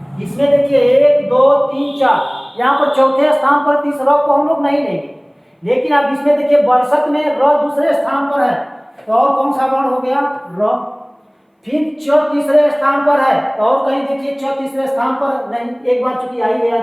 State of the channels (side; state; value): both; identical; correlation 1.00